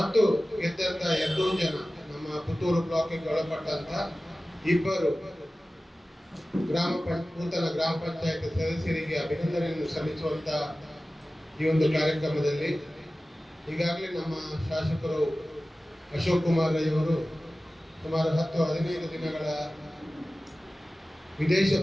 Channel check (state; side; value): normal; both; correlation 0.96